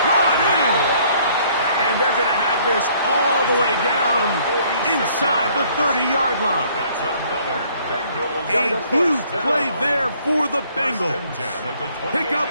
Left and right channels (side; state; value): both; inverted; correlation -0.61